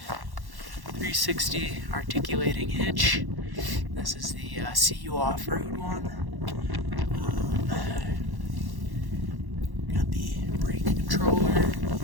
360 articulating hitch. This is the CU Offroad one. Got the brake controller.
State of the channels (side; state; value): left; late; 1.1 ms